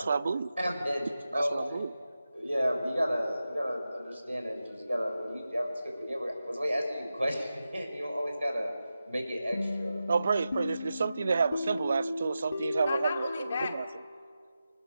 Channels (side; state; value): both; inverted; correlation -0.92